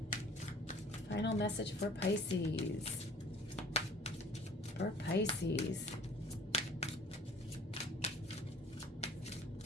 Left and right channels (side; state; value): both; normal; correlation 0.50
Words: Final message for Pisces. For Pisces.